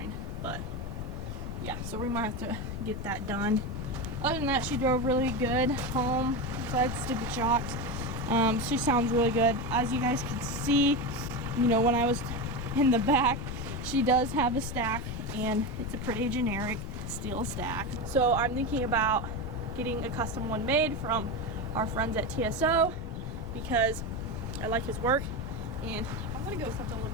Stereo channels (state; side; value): noise; left; rumble, 6 dB below the sound